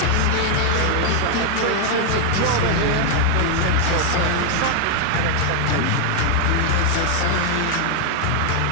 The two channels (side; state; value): both; different; correlation 0.00